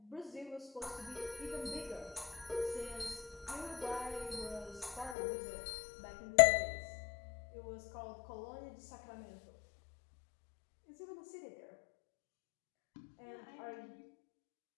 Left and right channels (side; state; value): right; drops out; at 5.2 s